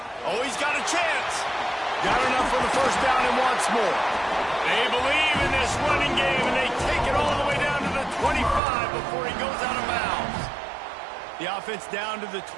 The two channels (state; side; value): drops out; left; at 8.6 s